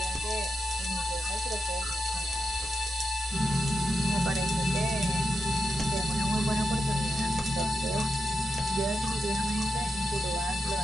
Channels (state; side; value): normal; both; correlation 0.87